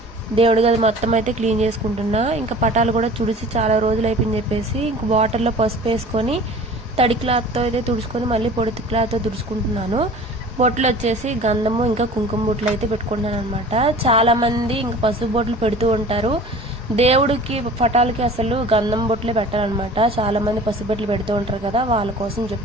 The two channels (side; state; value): both; normal; correlation 0.43